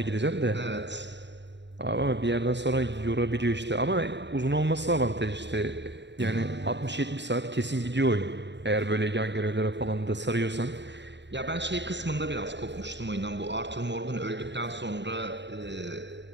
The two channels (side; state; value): left; late; 0.52 ms